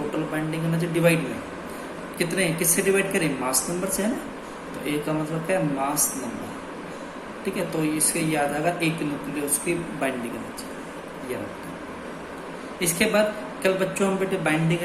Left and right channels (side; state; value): both; identical; correlation 1.00